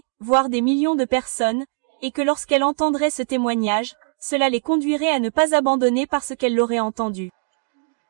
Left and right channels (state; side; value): silent; left; digital silence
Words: voire des millions de personnes, et que lorsqu'elles entendraient ce témoignage, cela les conduirait à ne pas abandonner parce qu'elles l'auraient entendu.